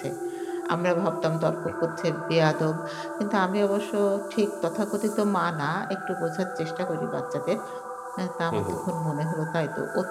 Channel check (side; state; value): both; identical; correlation 1.00